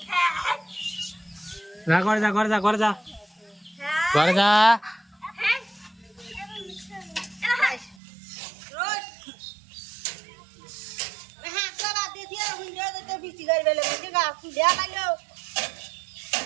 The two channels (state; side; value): drops out; left; at 8.0 s